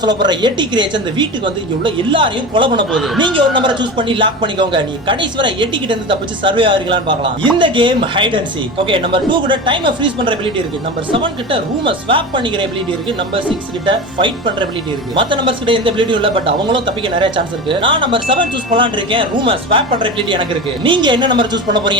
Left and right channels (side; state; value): both; normal; correlation 0.28